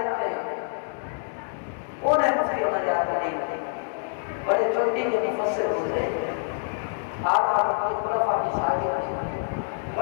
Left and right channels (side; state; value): right; silent; digital silence